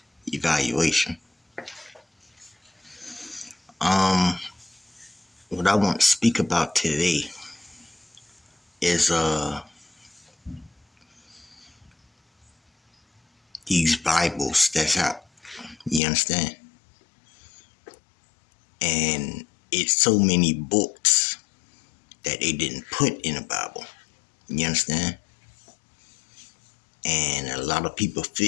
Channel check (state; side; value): drops out; right; at 16.0 s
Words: evaluation. Um, what I want to speak about today is these Bibles that's out. You understand? And it's so many books that they didn't put in the Bible. You understand? And a lot of people